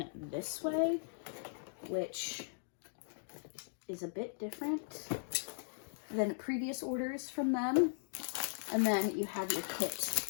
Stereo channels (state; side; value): silent; right; digital silence